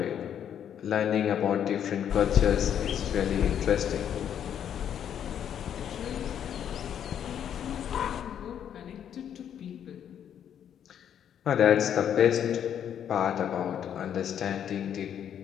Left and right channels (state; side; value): quieter; right; 9.3 dB